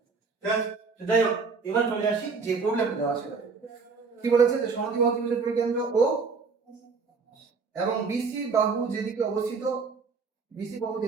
ঠিক আছে, তো যাই হোক, এবার চলে আসি যে প্রবলেমটা দেওয়া আছে। কি বলেছে? যে সমদ্বিবাহু ত্রিভুজের পরিকেন্দ্র ও এবং বিসি বাহু যেদিকে অবস্থিত, বিসি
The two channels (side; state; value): left; quieter; 4.9 dB